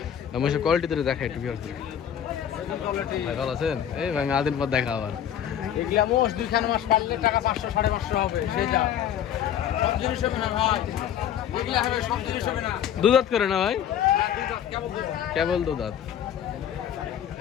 মহিষের কোয়ালিটি ধরে দেখা একটু। ভাই ভালো আছেন? এই ভাই আদিন পর দেখা আবার। এগুলা মোষ 2 মাস পারলে টাকা 500-550 হবে, সে যা সব জিনিস হবে না ভাই, এগুলা হবে সব জিনিস হবে না। 2 দাঁত করে না ভাই? কেমন কেবল 2 দাঁত।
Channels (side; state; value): right; quieter; 9.8 dB